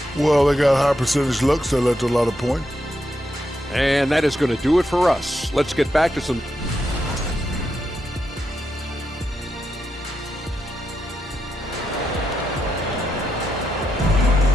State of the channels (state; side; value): normal; both; correlation 0.84